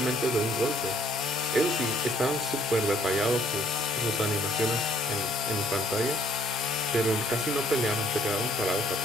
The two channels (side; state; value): both; normal; correlation 0.62